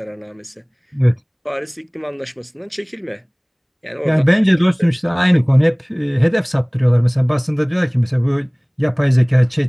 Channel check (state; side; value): identical; both; correlation 1.00